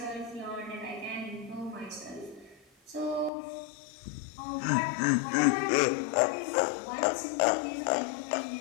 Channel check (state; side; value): drops out; right; at 3.3 s